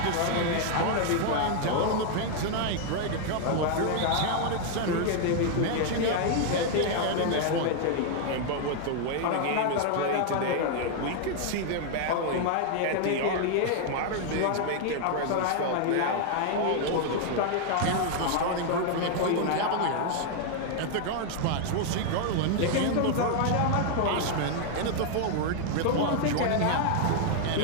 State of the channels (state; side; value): different; both; correlation 0.00